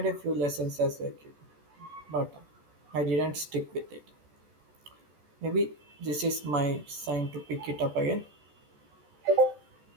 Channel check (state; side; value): late; left; 14 ms